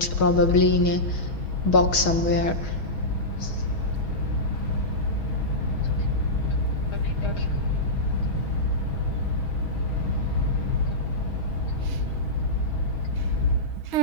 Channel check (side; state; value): right; late; 6.3 ms